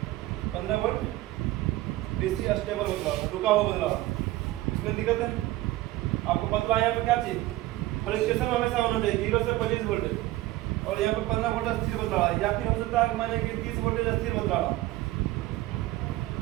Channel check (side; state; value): left; quieter; 17.3 dB